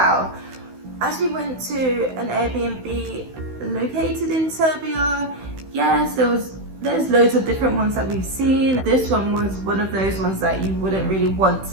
As we went to an Airbnb located in Serbia, yes, there's loads of different ones that we've seen. This one was one of those ones that you wouldn't really want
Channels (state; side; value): late; left; 16 ms